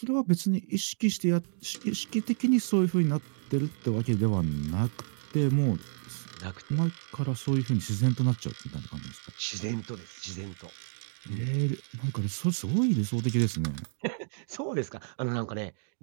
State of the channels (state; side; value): silent; left; digital silence